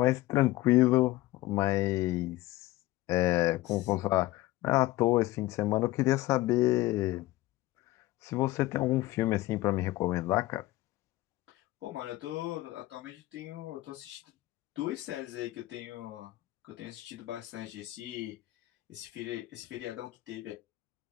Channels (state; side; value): quieter; right; 17.8 dB